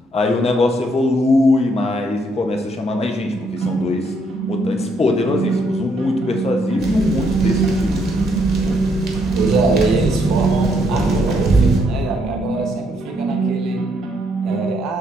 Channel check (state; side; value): normal; both; correlation 0.73